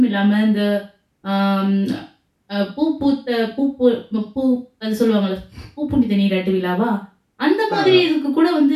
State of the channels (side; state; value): both; identical; correlation 1.00